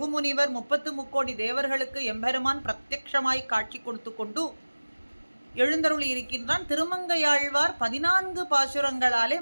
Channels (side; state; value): both; inverted; correlation -1.00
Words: முனிவர் 33 தேவர்களுக்கு எம்பெருமான் பிரத்யக்ஷமாய் காட்சி கொடுத்து கொண்டு எழுந்தருளி இருக்கின்றான். திருமங்கையாழ்வார் 14 பாசுரங்களாலே